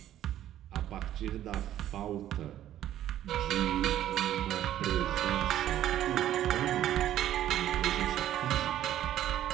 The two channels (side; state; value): left; quieter; 12.1 dB